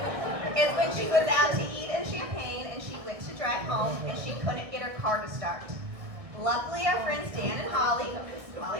is when she was out to eat in Champaign and she went to drive home and she couldn't get her car to start. Luckily, our friends Dan and Holly's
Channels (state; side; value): late; left; 1.6 ms